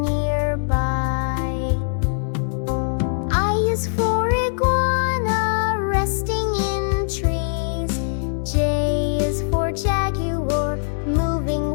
I is for iguana, resting in trees. J is for jaguar, moving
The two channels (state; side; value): silent; right; digital silence